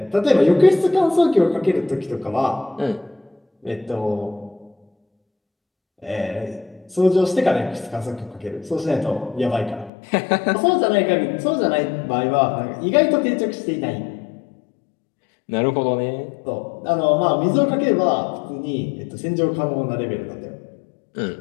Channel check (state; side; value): drops out; right; at 9.9 s